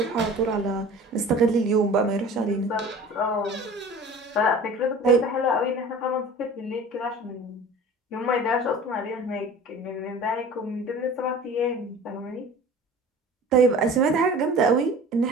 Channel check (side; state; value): both; normal; correlation 0.41